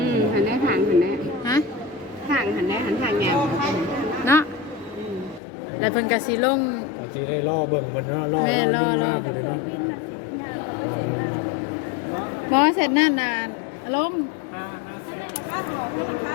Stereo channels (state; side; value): drops out; right; at 5.4 s